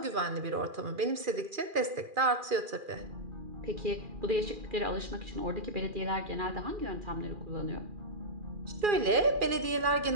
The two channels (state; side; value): late; left; 2.4 ms